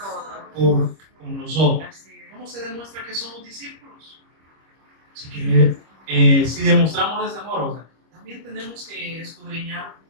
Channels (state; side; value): late; left; 25 ms